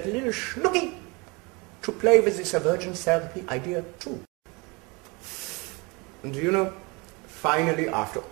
little schnooky to play with this aversion therapy idea too. And finally, after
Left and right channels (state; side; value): quieter; left; 27.7 dB